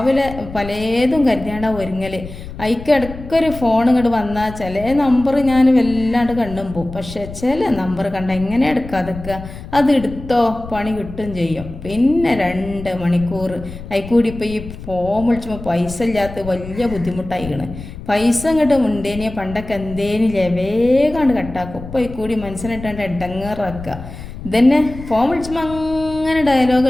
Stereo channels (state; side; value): noise; left; rumble, 12 dB below the sound